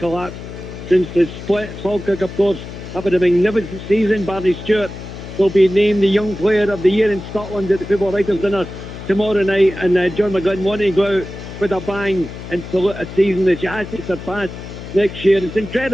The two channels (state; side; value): noise; left; hum, 11 dB below the sound